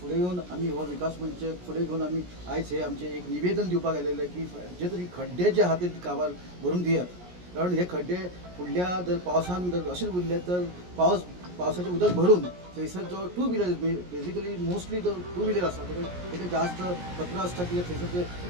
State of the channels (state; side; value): late; left; 17 ms